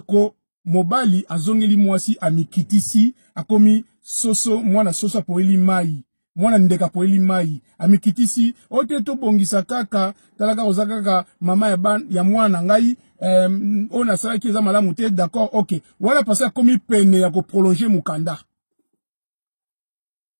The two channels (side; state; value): both; inverted; correlation -1.00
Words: mobali azongeli mwasi amikitisi akomi soso mwana soso poeli mai mwana ndeka poeli mai amikitisi ote to bongisa kaka talaka ozakaka mama ya mwana ngai ona sala ki eza malamu te d'accord OK wala pasa komi pene ya ko prolonger mukanda